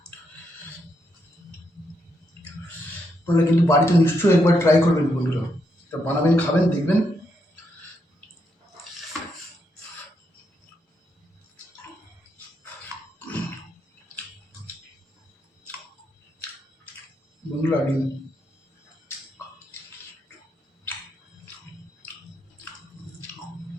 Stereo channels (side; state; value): both; normal; correlation 0.79